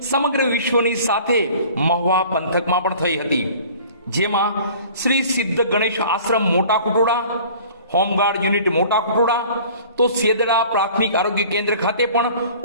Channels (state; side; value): inverted; both; correlation -0.47